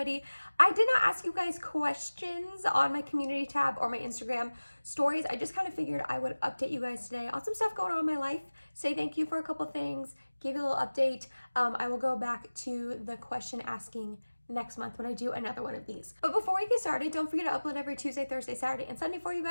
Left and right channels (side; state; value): both; inverted; correlation -1.00